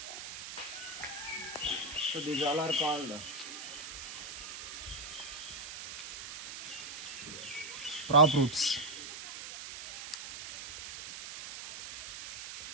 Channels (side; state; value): right; noise; hiss, 9 dB below the sound